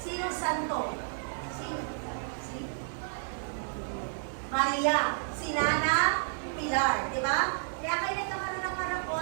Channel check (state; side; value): silent; left; 57 dB below the other